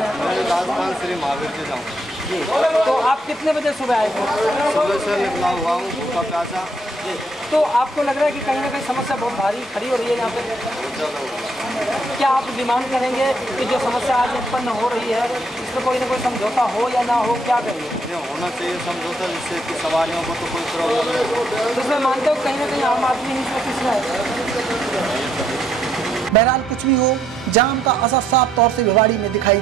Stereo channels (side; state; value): both; normal; correlation 0.73